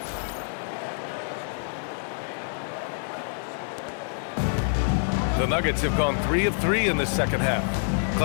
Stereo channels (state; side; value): silent; right; digital silence